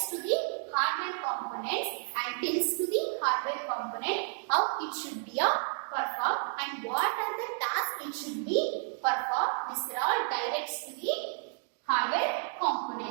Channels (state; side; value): silent; left; 57 dB below the other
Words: to the hardware components and tells to the hardware component how it should be performed and what are the tasks it should be performed. These are all directs to the hardware